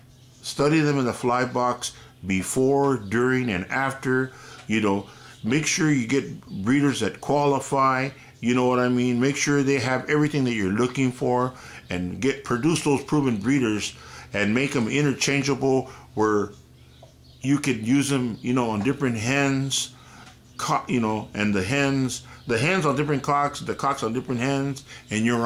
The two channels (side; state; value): both; identical; correlation 1.00